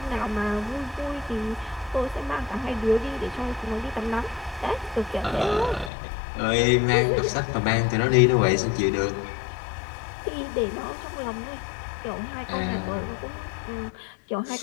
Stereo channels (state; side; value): drops out; right; at 5.9 s